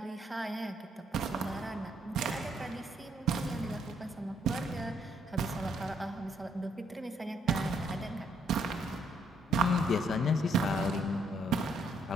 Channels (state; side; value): normal; both; correlation 0.70